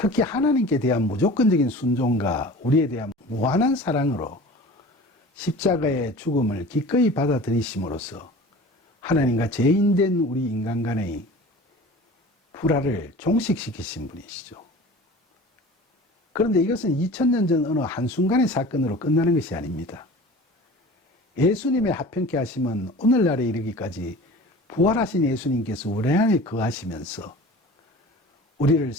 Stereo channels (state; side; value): normal; both; correlation 0.40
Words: 하나님께 대한 무조건적인 순종과 우리에 대한 무한한 사랑으로 십자가의 죽음을 기꺼이 받아들이심으로써 하나님과 죄인된 우리 인간 간의 불화를 종식시키신 분이시죠. 그런데 이것은 2000년 전 어느 한순간의 사건으로 끝나는 것이 아닙니다. 예수님의 화평케 하심은 오늘날에 이르기까지 부활하신 예수님께서 우리 안에 거하시면서 우리를